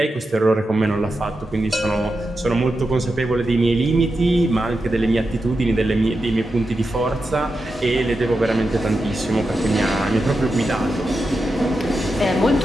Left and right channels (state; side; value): normal; both; correlation 0.89